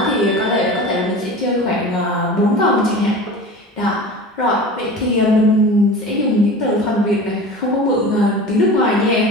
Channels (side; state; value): both; normal; correlation 0.35